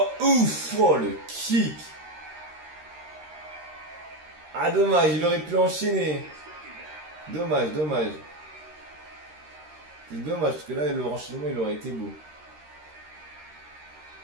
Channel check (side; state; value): left; late; 13 ms